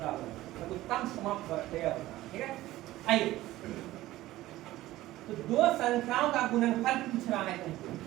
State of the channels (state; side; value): quieter; left; 16.2 dB